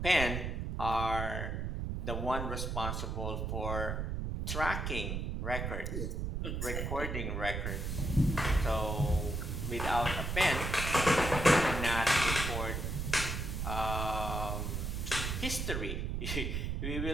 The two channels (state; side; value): noise; right; rumble, 2 dB below the sound